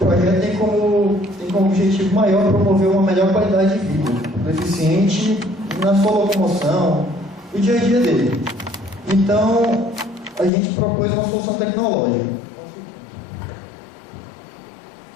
O projeto tem como objetivo maior promover uma melhor qualidade de vida do deficiente na sua locomoção, no dia a dia dele. Então, a gente propôs uma solução tecnológica.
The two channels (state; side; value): drops out; right; at 10.5 s